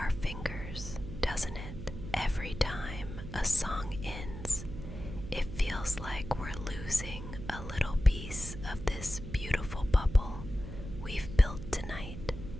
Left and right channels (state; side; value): noise; right; hum, 10 dB below the sound